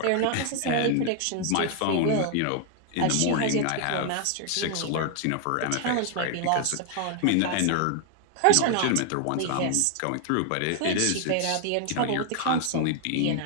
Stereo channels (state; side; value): different; both; correlation 0.00